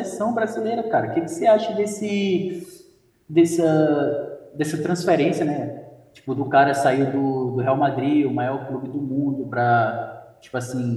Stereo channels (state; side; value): identical; both; correlation 1.00